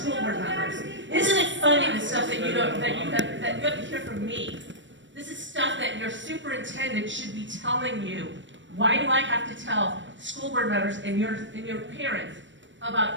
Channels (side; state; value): left; late; 0.54 ms